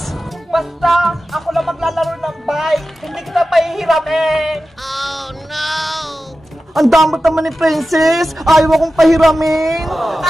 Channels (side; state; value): both; normal; correlation 0.94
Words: Basta, ako lang maglalaro ng bike. Hindi kita pahihiramin. Oh, no! Ang damot naman ni Princess. Ayaw akong pahiramin.